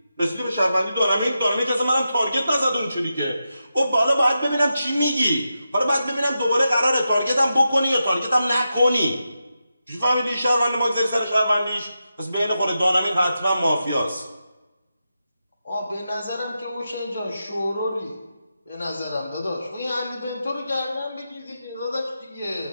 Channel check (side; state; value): both; inverted; correlation -0.88